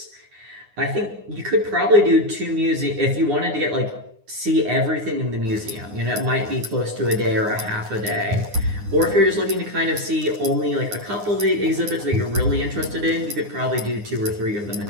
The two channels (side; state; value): left; late; 9.7 ms